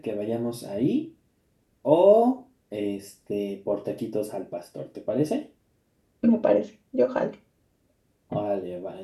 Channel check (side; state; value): both; identical; correlation 1.00